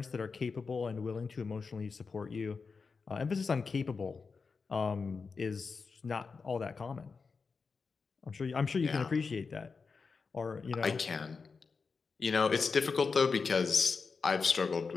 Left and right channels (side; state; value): right; quieter; 4.9 dB